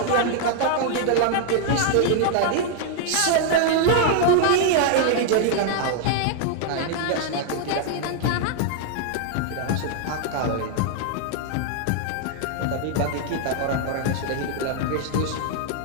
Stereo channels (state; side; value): different; both; correlation 0.00